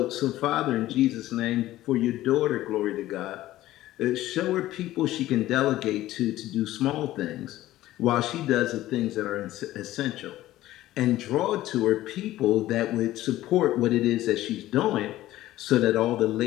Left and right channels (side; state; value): right; quieter; 15.2 dB